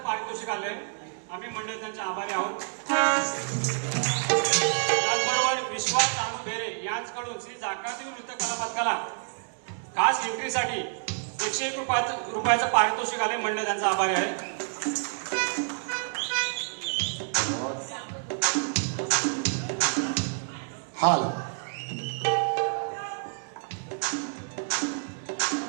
पारितोषिक आलंय. आम्ही मंडळ त्यांचे आभारी आहोत. त्याचबरोबर विश्वास अनु भेरे यांच्याकडून श्री जाकादेव नृत्य कला पथकाला खास एंट्रीसाठी 101 रुपयाचं पारितोषिक आले. मंडळ त्यांचा आभारी आहे. हाल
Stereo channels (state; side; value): silent; left; digital silence